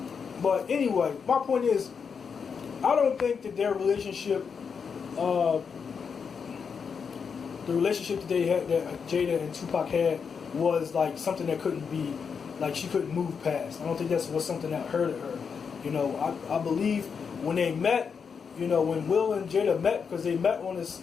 But anyway, my point is, I don't think that their relationship, the relationship that they had, that Jada and Tupac had, was like something that couldn't be, like she couldn't move past. I don't think that was something that hurted her. I believe when they met, when Will and Jada met, because they met on this,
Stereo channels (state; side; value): quieter; right; 6.2 dB